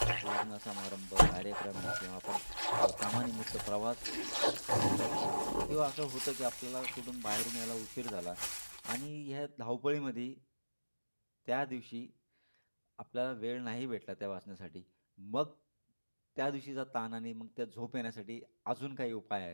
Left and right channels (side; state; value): both; inverted; correlation -1.00